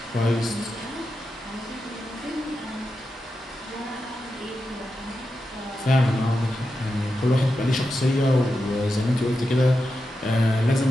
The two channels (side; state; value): both; normal; correlation 0.89